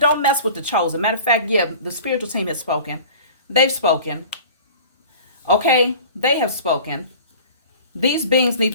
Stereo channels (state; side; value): inverted; both; correlation -0.42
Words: mess with the chosen. Matter of fact, yeah, the spiritual team has spoken. They've spoken. Okay, they have spoken. These beings need